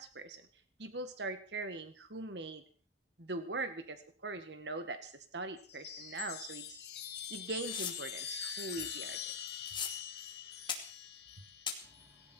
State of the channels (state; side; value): normal; both; correlation -0.03